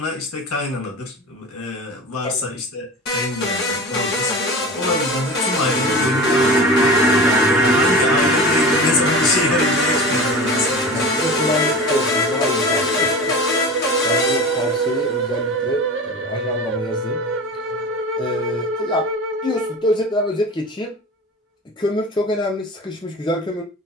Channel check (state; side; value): normal; both; correlation 0.33